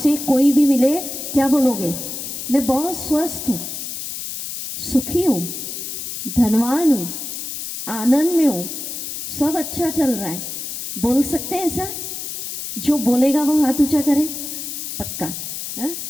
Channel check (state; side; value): noise; left; hiss, 6 dB below the sound